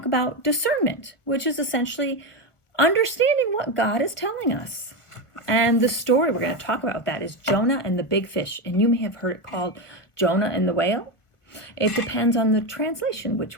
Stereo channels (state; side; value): late; right; 1.4 ms